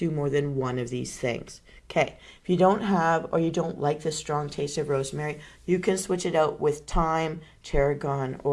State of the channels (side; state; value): both; identical; correlation 1.00